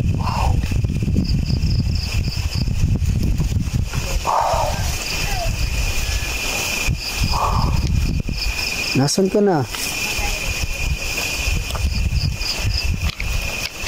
Wow. Nasaan ka na?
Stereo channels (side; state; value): both; identical; correlation 1.00